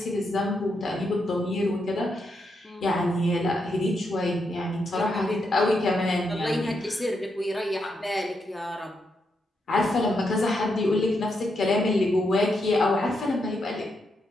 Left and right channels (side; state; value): both; normal; correlation 0.82